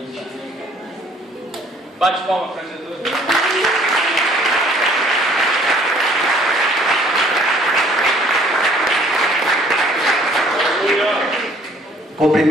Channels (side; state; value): both; normal; correlation 0.58